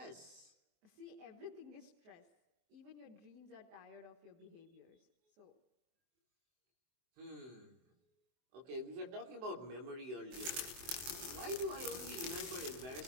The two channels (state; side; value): late; left; 23 ms